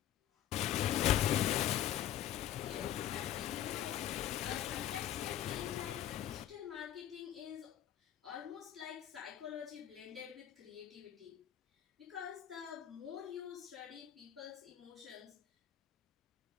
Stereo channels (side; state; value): right; quieter; 11.5 dB